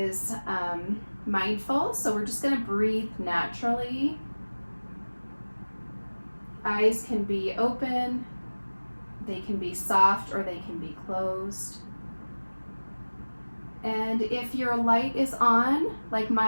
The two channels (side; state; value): both; inverted; correlation -1.00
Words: mindful. So we're just going to breathe naturally. Eyes can be open, they can be soft, or they can be closed. And if your light is on, like